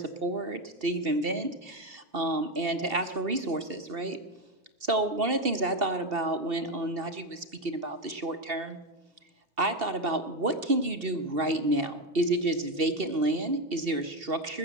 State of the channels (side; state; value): left; late; 2.7 ms